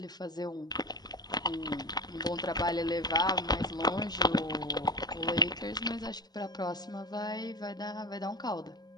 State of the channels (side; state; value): right; late; 0.19 ms